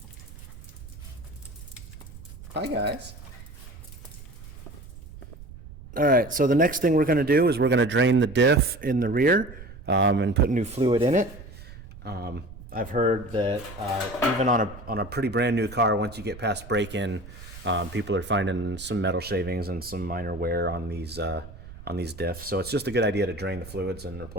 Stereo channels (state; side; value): noise; right; rumble, 16 dB below the sound